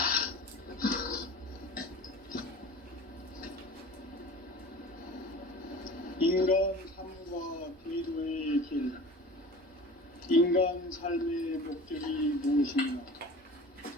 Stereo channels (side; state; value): both; normal; correlation 0.39